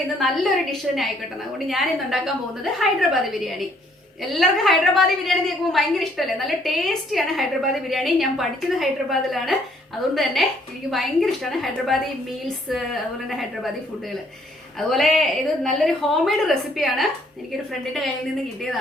ഇന്ന് നല്ലൊരു ഡിഷ് തന്നെ ആയിക്കോട്ടെ. അതുകൊണ്ട് ഞാൻ ഇന്ന് ഉണ്ടാക്കാൻ പോകുന്നത് ഹൈദരാബാദി ബിരിയാണി. എല്ലാവർക്കും ഹൈദരാബാദി ബിരിയാണി കേൾക്കുമ്പോൾ ഭയങ്കര ഇഷ്ടമല്ലേ? നല്ല ടേസ്റ്റിയാണ് ഹൈദരാബാദി ബിരിയാണി. ഞാൻ പഠിച്ചത് ഹൈദരാബാദിലാണ്, അതുകൊണ്ട് തന്നെ എനിക്ക് ഭയങ്കര ഇഷ്ടമാണ് ഹൈദരാബാദി മീൽസ്, അതുപോലെ തന്നെ ഹൈദരാബാദി ഫുഡുകൾ. അതുപോലെ ഇത് നല്ലൊരു ഹോം മെയ്ഡ് റെസിപ്പിയാണ്, എനിക്കൊരു ഫ്രണ്ടിന്റെ കയ്യിൽ നിന്ന്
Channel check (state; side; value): normal; both; correlation 0.65